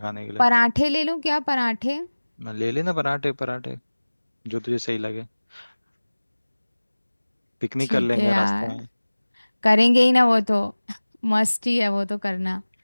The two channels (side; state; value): both; inverted; correlation -1.00